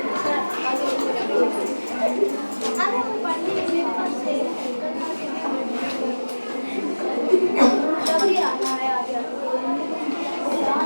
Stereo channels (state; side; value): inverted; both; correlation -1.00